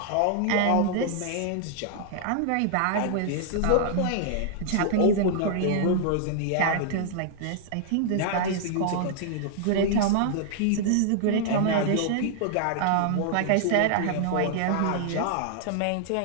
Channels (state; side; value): different; both; correlation -0.01